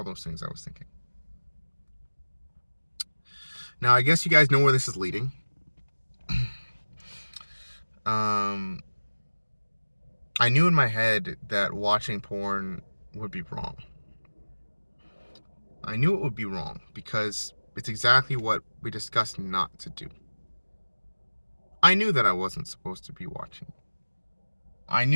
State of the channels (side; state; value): both; inverted; correlation -1.00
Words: things I was thinking. Now I guess you guys know where this is leading. Um, I knew in my head that watching porn would be wrong. I knew it would be wrong because it's exactly what we discussed not to do. I knew that I wasn't supposed to be watching. I